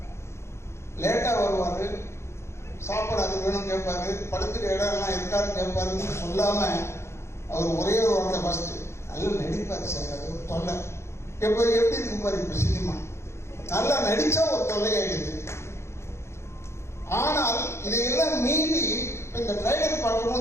லேட்டா வருவாரு, சாப்பாடு அது வேணும் கேட்பாரு, படுத்துற இடம்லாம் இருக்காருன்னு கேட்பாருன்னு சொல்லாம அவர் ஒரே ஒரு வார்த்தை ஃபர்ஸ்ட் நல்லா நடிப்பாரு சார். அது ஒரு தொல்லை. எப்போ எப்படி இருக்கு பாரு இப்ப சினிமா, நல்லா நடிச்சா ஒரு தொல்லையாயிடுது. ஆனால் இதையெல்லாம் மீறி இந்த ட்ரைலர்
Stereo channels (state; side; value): late; right; 0.13 ms